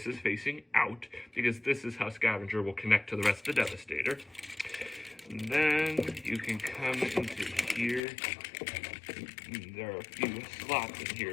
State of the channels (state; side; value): drops out; right; at 8.0 s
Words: is facing out, because this is how Scavenger will connect to the rest of the Devastator. And then you can come into here. There are a few slots in